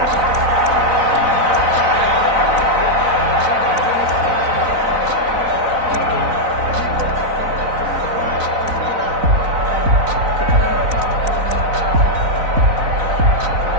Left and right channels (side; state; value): left; late; 3.9 ms